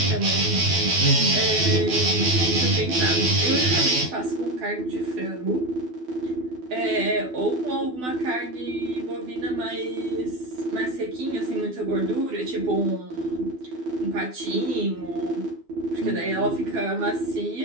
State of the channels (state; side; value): late; left; 12 ms